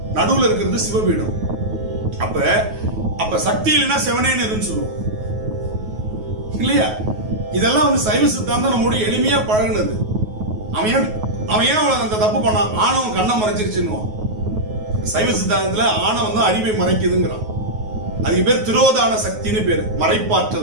நடுவுல இருக்கிறது சிவபீடம். அப்ப சக்தி இல்லைன்னா சிவனேன்னு சொல்லுவோம் இல்லையா? இதெல்லாம் சைவ சித்தாந்தம் நம்மோட எளிமையா பழகினது. அவன் ஏன் அந்த தப்பு பண்ணான்? ஆணவம் கண்ணை மறைச்சிருச்சுன்னு. சைவ சித்தாந்தத்துல ஆணவம் தான் அறிவை மறைக்குதுங்கிறான். அதுக்கு பேர் திரோதான சக்தின்னு பேரு,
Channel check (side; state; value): left; late; 9.4 ms